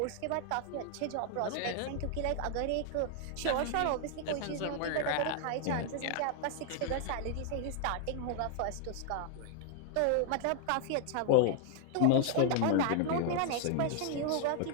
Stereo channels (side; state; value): both; different; correlation 0.00